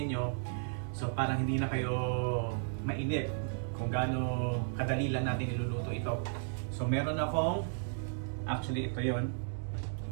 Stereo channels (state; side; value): silent; left; digital silence